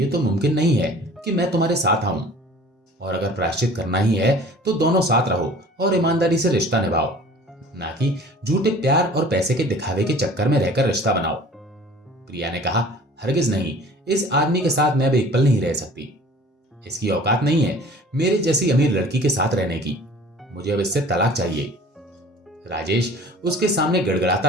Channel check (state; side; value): normal; both; correlation 0.47